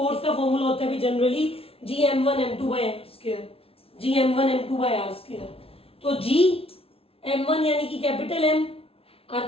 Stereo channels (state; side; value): late; right; 0.27 ms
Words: का फॉर्मूला होता है जनरली Gm1m2/r², Gm1m2/r²। तो Gm1 यानी कि कैपिटल M,